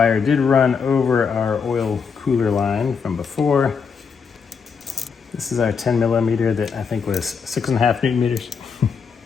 did run over our oil cooler line from before. This is our 10 millimeter that I think was 6.5 Newton meters.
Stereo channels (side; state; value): right; quieter; 5.9 dB